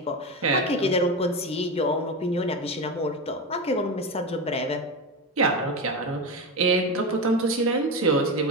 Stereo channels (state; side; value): normal; both; correlation 0.18